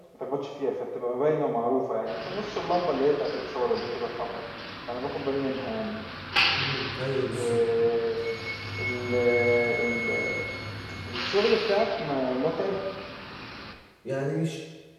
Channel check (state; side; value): identical; both; correlation 1.00